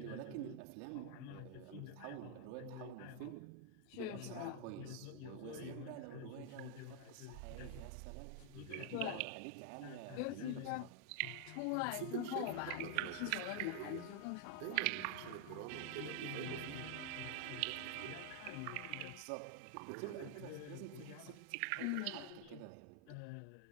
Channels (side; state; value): both; different; correlation 0.00